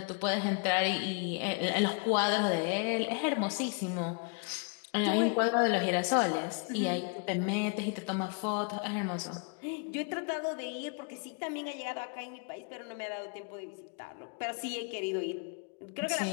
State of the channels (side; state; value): right; quieter; 37.1 dB